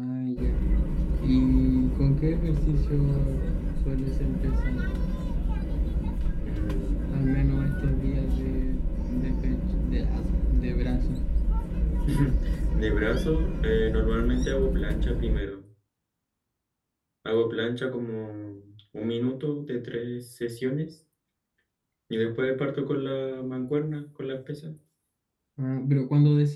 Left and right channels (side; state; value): both; identical; correlation 1.00